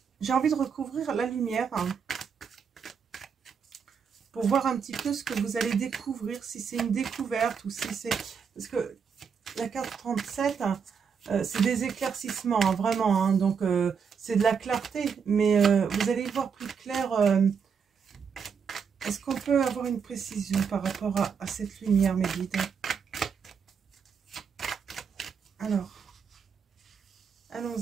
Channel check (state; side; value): quieter; left; 6.4 dB